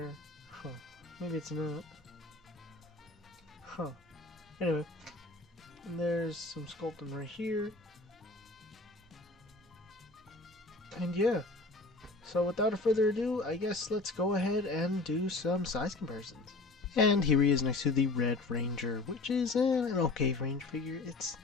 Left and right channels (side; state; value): right; quieter; 3.2 dB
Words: Huh. Maybe it's not. Huh. Anyway. And there's some sculpting right here. And yeah. So without further ado, I guess let's go ahead and do some size comparisons. And here he is next to the Red Ranger, which is an okay range figure. It's